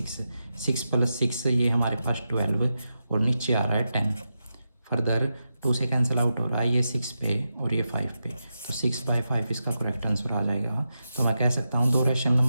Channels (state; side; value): inverted; both; correlation -0.89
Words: 6 + 6 ये हमारे पास 12, और नीचे आ रहा है 10। फर्दर 2 से कैंसिल आउट हो रहा है, ये 6 पे और ये 5 पे, तो 6/5 इसका करेक्ट आंसर आ जाएगा। तो मैं कह सकता हूँ 2 रैशनल